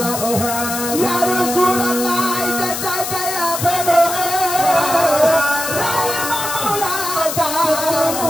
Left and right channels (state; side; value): noise; left; hiss, 5 dB below the sound